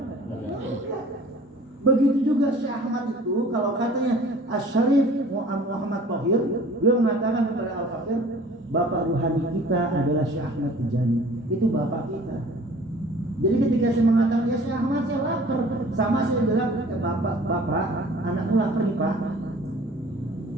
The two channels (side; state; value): both; normal; correlation 0.49